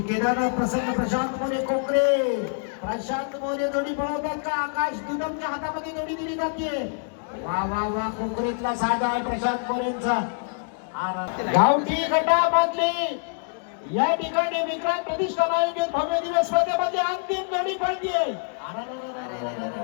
केदारनाथ प्रसन्न प्रशांत मोरे कोकरे. प्रशांत मोरे जोडी पळवतात का? आकाश दुदमच्या हातामध्ये जोडी दिली जाते. वा वा वा. कोकरेतला साधा आहे प्रशांत मोरेंचा. गावठी गटामधली या ठिकाणी विक्रांत प्रतिष्ठान आयोजित भव्य दिवस स्पर्धेमध्ये अंतिम जोडी पडतीये.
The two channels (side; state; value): right; silent; digital silence